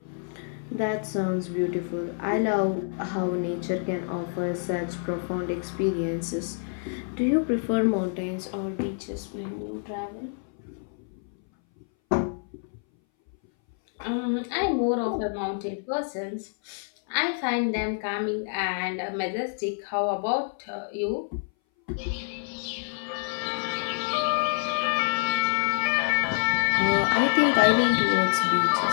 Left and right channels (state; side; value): silent; right; 59 dB below the other